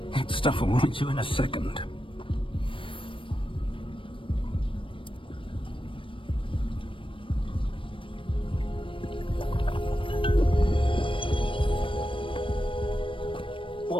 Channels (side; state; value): right; late; 0.25 ms